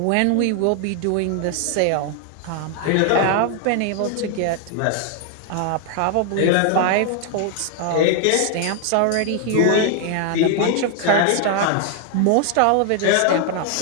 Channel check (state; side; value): different; both; correlation 0.00